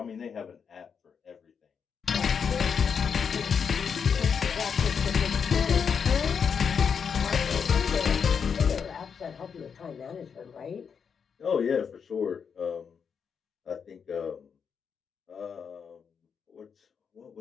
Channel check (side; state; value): right; quieter; 6.6 dB